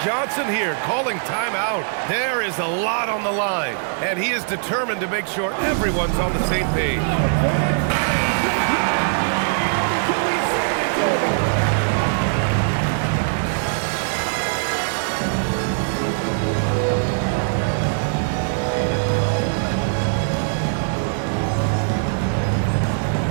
Johnson here calling timeout. There is a lot on the line, and he is determined to make sure everyone's on the same page.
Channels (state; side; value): silent; left; 62 dB below the other